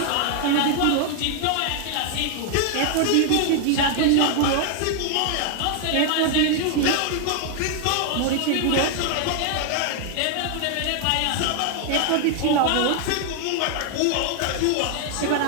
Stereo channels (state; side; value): different; both; correlation 0.00